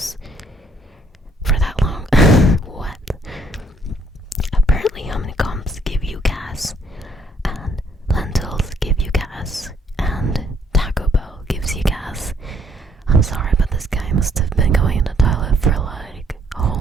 for that long? What? Apparently honeycombs give you gas, and lentils give you gas, and Taco Bell gives you gas. I'm sorry, but this guy must have been going in the toilet for like a whole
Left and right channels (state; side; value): normal; both; correlation 0.67